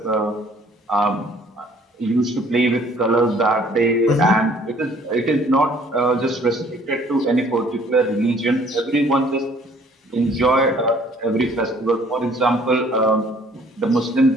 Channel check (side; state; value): both; normal; correlation 0.57